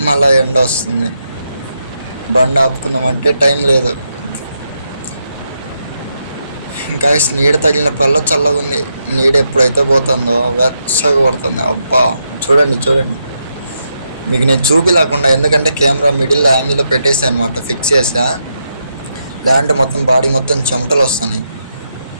మళ్ళా ఎండ వస్తుంది. బండి ఆపుకుందామంటే టైం లేదు. ఇంకా నీడ తగిలినప్పుడల్లా చల్లగా ఉంది. నీడ ఎప్పుడైతే పోతుందో వెచ్చగా పడుతుంది. అబ్బా, చూడండి మీకు నేను చూపిలేకుండా, ఎందుకంటే కెమెరా మిడిల్ యాంగిల్లో పెట్టేసా అనమాట, ఫిక్స్ చేసా. లేదంటే మొత్తం బాడీ మొత్తం చెమటలు వస్తున్నాయి.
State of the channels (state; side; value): inverted; both; correlation -0.82